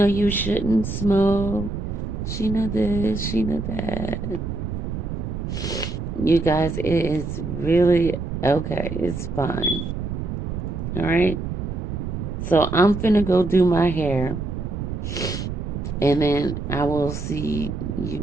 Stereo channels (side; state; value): right; noise; rumble, 5 dB below the sound